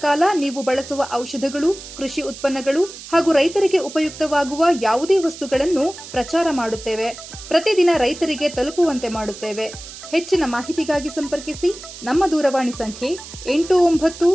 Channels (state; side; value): noise; right; hiss, 14 dB below the sound